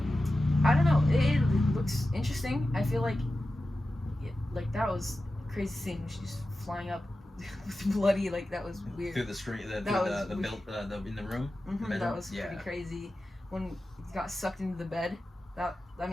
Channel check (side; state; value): both; normal; correlation 0.93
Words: don't know. It looks interesting. I feel like that was a crazy scene when she's flying up with bloody, like that was weird. Through the screen, in the room. That was pretty crazy. When he got sucked into the bed,